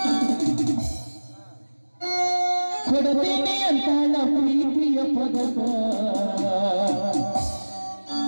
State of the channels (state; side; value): inverted; both; correlation -1.00